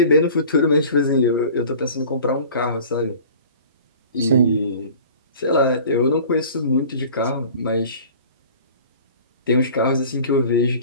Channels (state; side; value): inverted; both; correlation -0.43